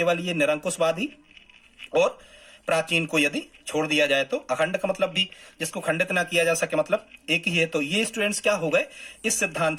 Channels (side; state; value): both; identical; correlation 1.00